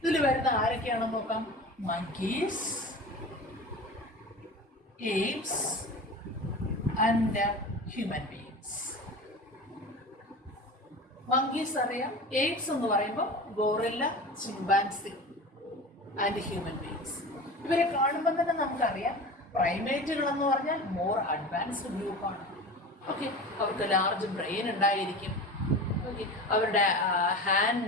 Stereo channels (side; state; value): both; normal; correlation 0.33